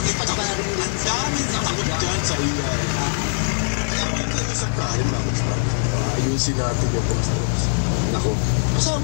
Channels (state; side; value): silent; right; 64 dB below the other